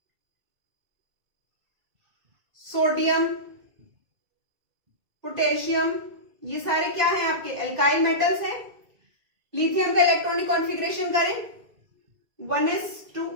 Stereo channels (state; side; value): late; left; 2.1 ms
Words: सोडियम, पोटेशियम, ये सारे क्या हैं आपके? एल्काइल मेटल्स हैं। लिथियम का इलेक्ट्रॉनिक कॉन्फ़िगरेशन करें 1s2